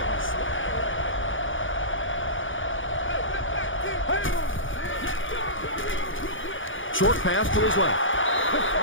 Short pass to his left.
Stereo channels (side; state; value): right; late; 0.57 ms